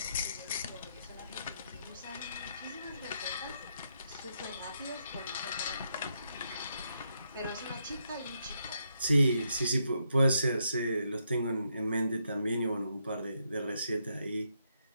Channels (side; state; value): both; inverted; correlation -0.79